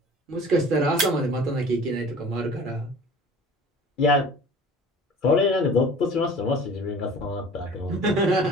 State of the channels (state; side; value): normal; both; correlation 0.44